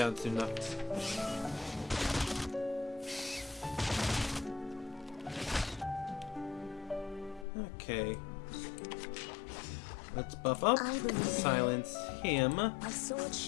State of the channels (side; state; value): right; drops out; at 7.5 s